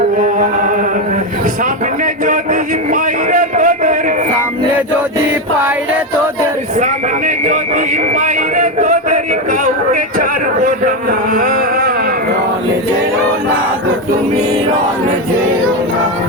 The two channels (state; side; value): normal; both; correlation 0.10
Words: সামনে যদি পাইরে তোদের, সামনে যদি পাইরে তোদের, সামনে যদি পাইরে তোদের কাউকে ছাড়বো না। রনে যেও না গো তুমি, রনে যেও না,